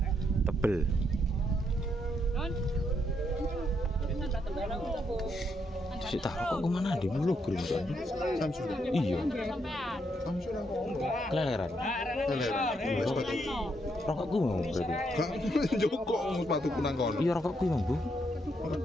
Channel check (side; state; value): both; normal; correlation 0.77